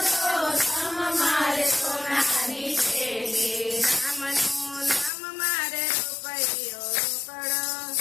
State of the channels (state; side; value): drops out; right; at 5.1 s